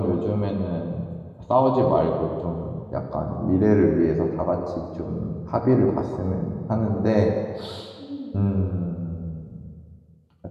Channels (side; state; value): both; identical; correlation 1.00